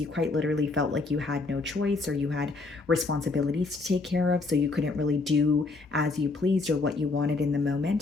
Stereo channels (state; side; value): quieter; right; 3.6 dB